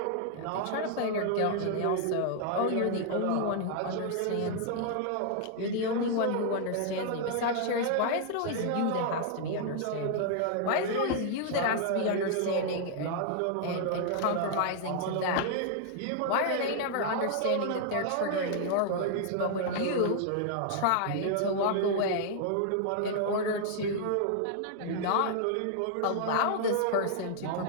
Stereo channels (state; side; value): different; both; correlation -0.01